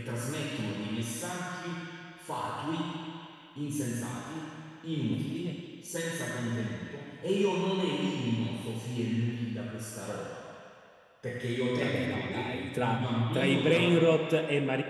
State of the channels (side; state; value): both; identical; correlation 1.00